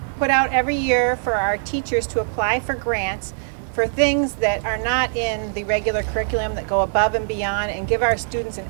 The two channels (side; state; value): left; silent; digital silence